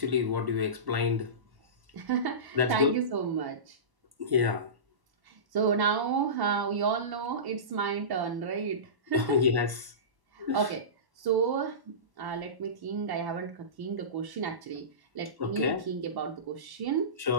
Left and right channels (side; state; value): left; late; 1.1 ms